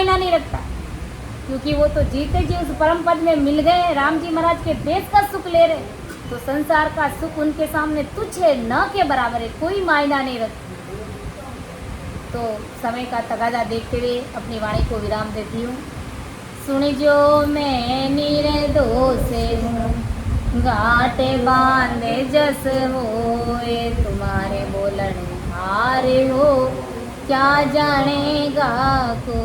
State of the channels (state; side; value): identical; both; correlation 1.00